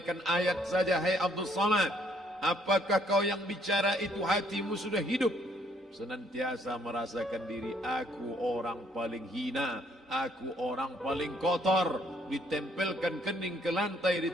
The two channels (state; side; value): normal; both; correlation 0.66